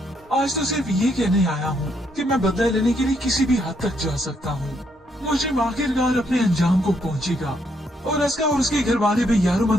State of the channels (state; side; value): normal; both; correlation 0.74